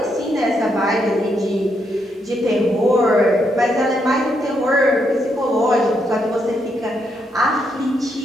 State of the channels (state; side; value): normal; both; correlation 0.78